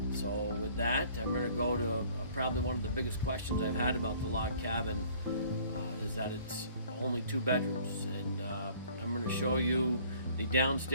So with that, I'm going to go to probably one of the biggest questions I've had about the log cabin is that it's only 2 bedrooms, and I'm going to show you the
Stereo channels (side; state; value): both; inverted; correlation -0.55